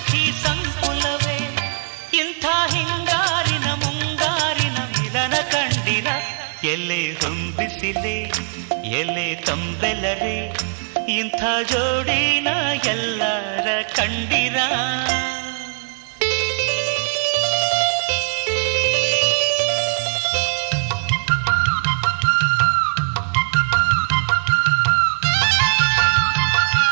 ಸಂಕುಲವೇ ಇಂಥ ಹಿಂಗಾರಿನ ಮುಂಗಾರಿನ ಮಿಲನ ಕಂಡಿರ ಎಲೆ ಹೊಂಬಿಸಿಲೆ ಎಲೆ ತಂಬೆಲರೆ ಇಂಥ ಜೋಡಿನ ಎಲ್ಲರ ಕಂಡಿರ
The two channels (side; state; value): left; silent; digital silence